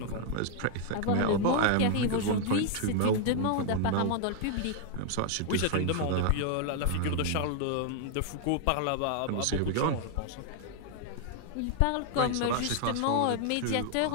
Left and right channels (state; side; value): different; both; correlation 0.00